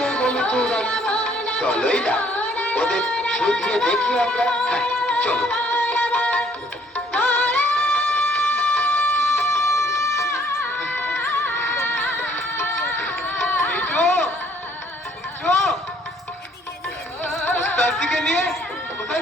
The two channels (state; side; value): normal; both; correlation 0.62